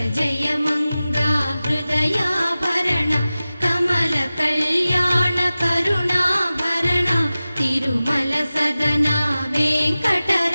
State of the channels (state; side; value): inverted; both; correlation -0.96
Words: జయ మంగ హృదయాభరణ కమల కళ్యాణ కరుణాభరణ తిరుమల సదన